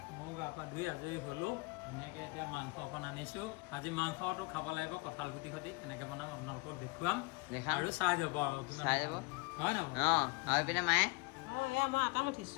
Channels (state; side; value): quieter; right; 27.3 dB